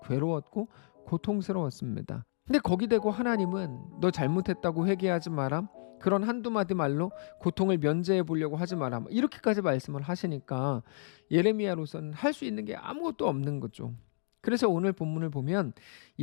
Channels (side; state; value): right; silent; digital silence